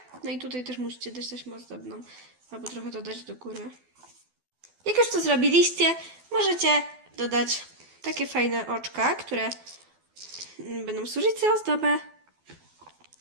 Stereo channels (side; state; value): left; late; 12 ms